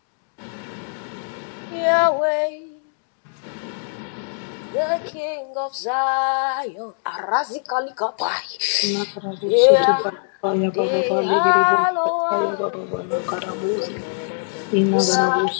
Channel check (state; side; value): silent; right; digital silence